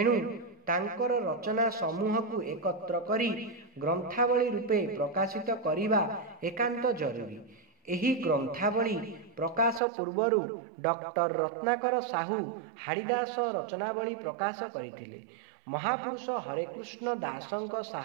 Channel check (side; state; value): left; drops out; at 9.8 s